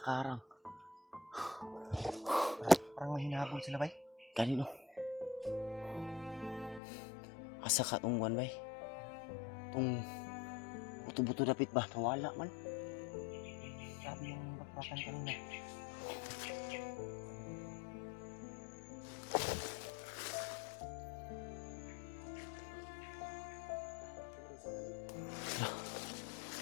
Parang mahinahabol sila bay. Kanino? Asa ka tong one bay? Tong buto-buto dapit ba? Nawala man. Sabi yung bakbakan kanina.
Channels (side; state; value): right; drops out; at 6.8 s